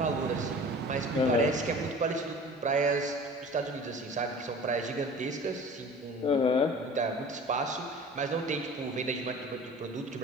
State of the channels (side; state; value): both; normal; correlation 0.42